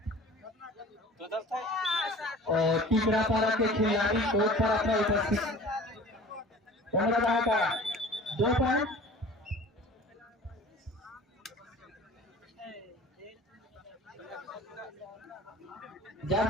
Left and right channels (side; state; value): both; normal; correlation 0.44